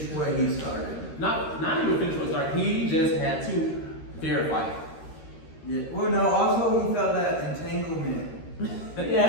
what he started. Not even finish what he started. He just had to verify it. Yeah. Well, no. Also, he felt that entanglement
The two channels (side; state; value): right; late; 13 ms